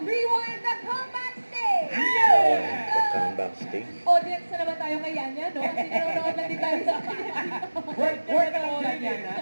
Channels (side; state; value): both; inverted; correlation -1.00